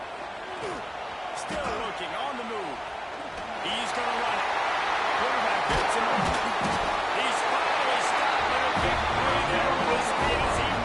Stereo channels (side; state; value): both; identical; correlation 1.00